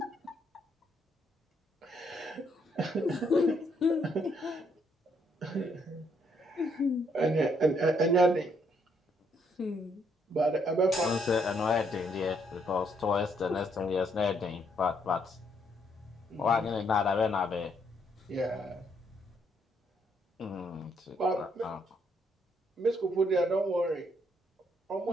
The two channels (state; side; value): normal; both; correlation 0.71